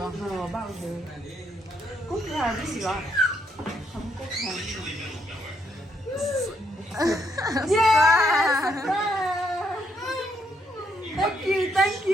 Bao giờ? Cúc hàng cái gì đó? Không cúc hàng. yes Thank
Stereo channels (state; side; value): normal; both; correlation 0.74